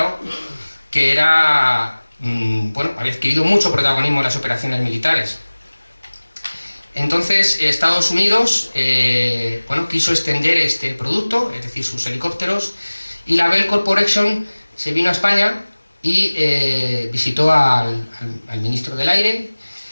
que era, bueno, había adquirido mucho protagonismo en las operaciones militares. Entonces, Estados Unidos bueno, quiso extender este producto, es decir, sus helicópteros, y la Bell Corporation se vino a España y visitó al ministro del Aire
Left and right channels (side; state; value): both; inverted; correlation -1.00